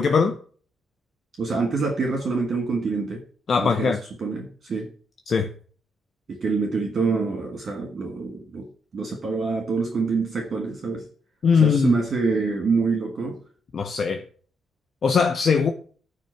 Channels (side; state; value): both; normal; correlation 0.76